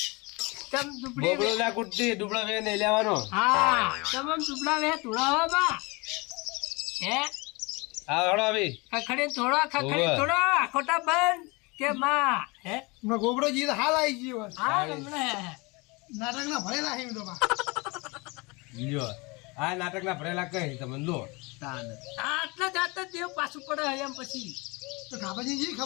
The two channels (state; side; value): quieter; right; 26.6 dB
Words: તમ દુબળી બોબડો ના કુટતી ડુબળો વે નહીં લેવાનો. હા તમ દુબળા વે તુડાવા બા હે હા હળો આવી ખખડી ઓવે. થોડો ખોટા બંધ કે માં હે હમણાં ગોબરોજી તો હાલ આવી ગયો હોય. હા રમણે નાટકના ભરેલા છે એમ તો બા. લ્યો આ નાટકના ભરેલા કઈ તમે લો આટલા જાતા દેવ પાછું પડે એમ પછી તો ખાબાજી જી